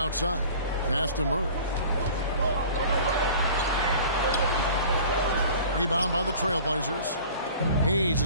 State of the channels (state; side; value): inverted; both; correlation -0.44